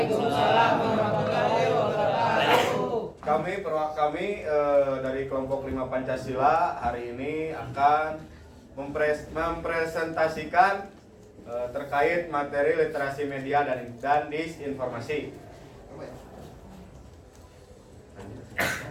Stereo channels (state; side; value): identical; both; correlation 1.00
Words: warahmatullahi wabarakatuh. Kami dari kelompok 5 Pancasila hari ini akan mempresentasikan terkait materi literasi media dan disinformasi.